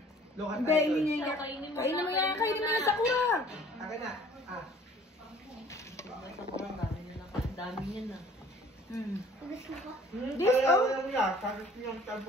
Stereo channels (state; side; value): normal; both; correlation 0.53